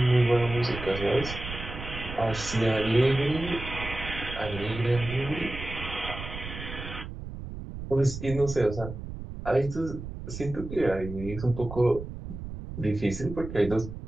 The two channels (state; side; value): noise; right; rumble, 9 dB below the sound